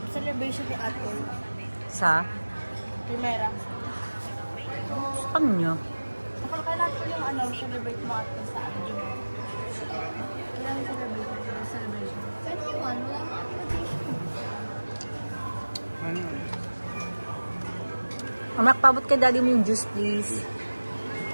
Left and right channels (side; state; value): both; inverted; correlation -1.00